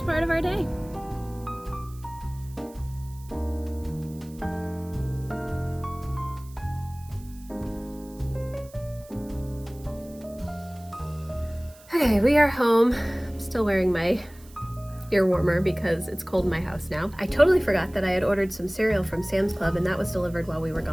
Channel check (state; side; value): noise; right; hiss, 24 dB below the sound